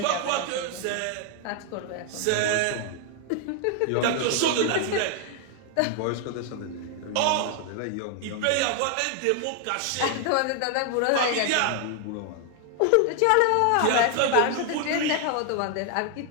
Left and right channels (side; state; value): both; different; correlation 0.00